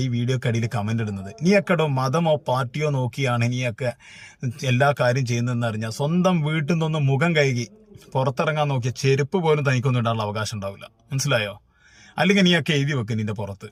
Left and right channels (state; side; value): identical; both; correlation 1.00